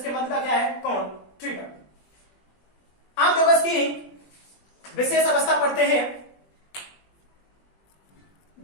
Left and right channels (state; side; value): late; right; 20 ms